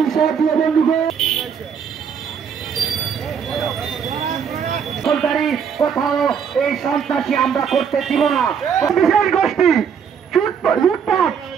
সাথী বন্ধুগণ, কোথাও এই সন্ত্রাসী আমরা করতে দিব না। বিশেষ গোষ্ঠী লুটপাট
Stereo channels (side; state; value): left; quieter; 7.2 dB